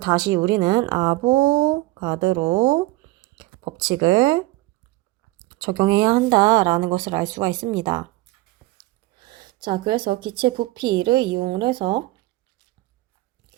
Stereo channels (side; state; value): left; quieter; 19.3 dB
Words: 우리는 아보가드로 법칙을 적용해야 한다라는 것을 알 수가 있습니다. 자, 그래서 기체 부피를 이용을 해서